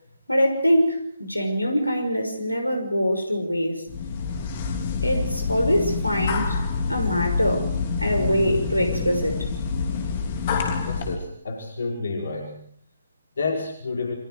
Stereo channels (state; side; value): inverted; both; correlation -0.82